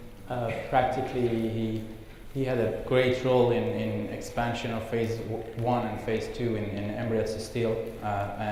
practically he had a great role in expansion of phase 1 and phase 2 in Emirates Steel,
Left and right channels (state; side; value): identical; both; correlation 1.00